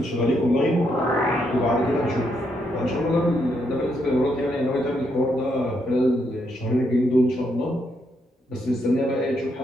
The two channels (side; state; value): both; normal; correlation 0.77